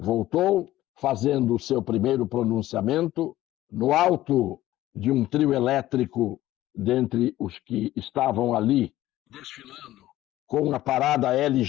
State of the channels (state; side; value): quieter; right; 15.1 dB